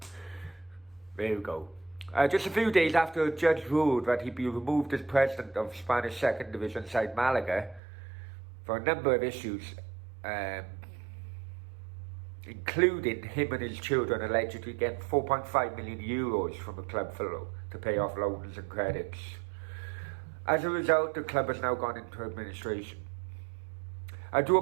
there we go. Just a few days after a judge ruled that he'd be removed as president of Spanish second division side Malaga for a number of issues, including him and his children allegedly getting 4.5 million euros from the club to pay off loans and credits. As a result, the club has now gone into administration. I do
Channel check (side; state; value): left; drops out; at 7.8 s